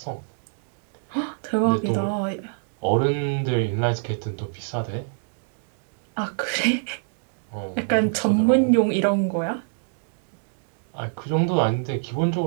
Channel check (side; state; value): left; silent; digital silence